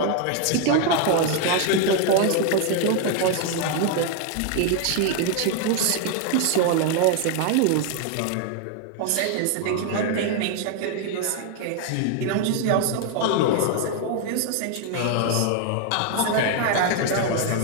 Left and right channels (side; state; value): both; different; correlation 0.00